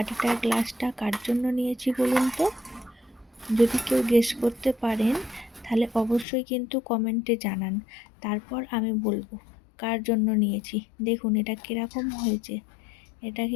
গ্লাসটা কার জন্য নিয়েছি বলুন তো? যদি কেউ গেস করতে পারেন তাহলে অবশ্যই কিন্তু কমেন্টে জানান, তারপর আমি বলবো কার জন্য নিয়েছি। দেখুন এটা কিরকম হয়েছে। এটা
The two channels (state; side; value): drops out; right; at 6.2 s